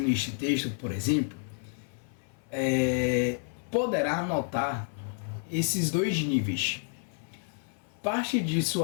este texto, por exemplo, poderá notar esses dois níveis. Parte de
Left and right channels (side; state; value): right; silent; 58 dB below the other